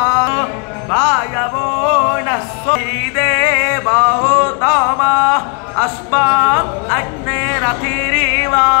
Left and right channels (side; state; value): right; quieter; 37.2 dB